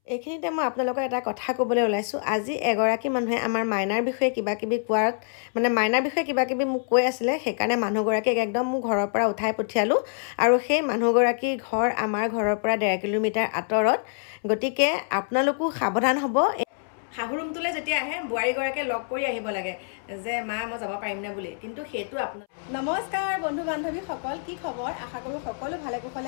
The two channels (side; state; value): right; silent; 61 dB below the other